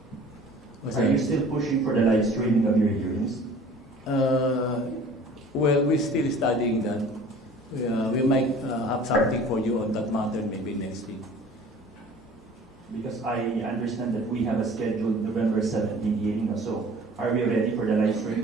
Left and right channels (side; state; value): both; normal; correlation 0.47